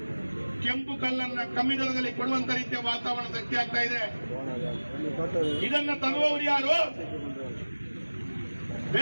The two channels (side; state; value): both; inverted; correlation -1.00